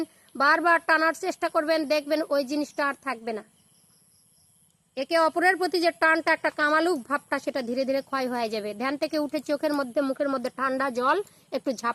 বারবার টানার চেষ্টা করবেন, দেখবেন ওই জিনিসটা আর থাকবে না। একে অপরের প্রতি যে টানটা, একটা কামালুক ভাবটা, সেটা ধীরে ধীরে ক্ষয় হয়ে যাবে। ধ্যান থেকে উঠে চোখের মধ্যে, মুখের মধ্যে ঠান্ডা জল একটু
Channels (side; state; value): both; identical; correlation 1.00